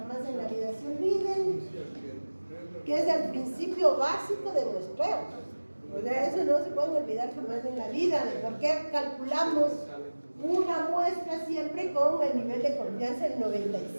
en la vida se olviden, que es el principio básico de muestreo. O sea, eso no se puede olvidar jamás en la vida, de por qué calculamos una muestra siempre con el nivel de confianza del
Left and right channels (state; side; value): inverted; both; correlation -1.00